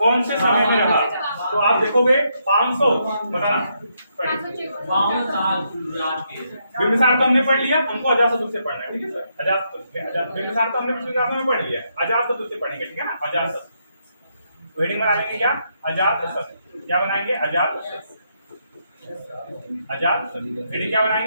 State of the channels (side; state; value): both; inverted; correlation -0.77